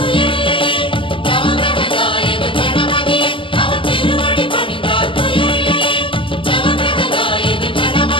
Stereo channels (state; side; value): late; right; 0.25 ms